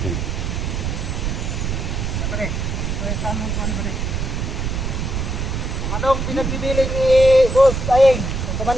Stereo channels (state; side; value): noise; right; rumble, 2 dB below the sound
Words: Pare, tama ko ano pare. Kung anong pinagbibiling ni Boss Ayeng, ang